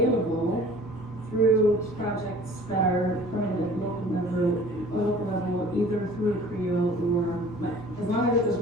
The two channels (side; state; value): both; normal; correlation 0.48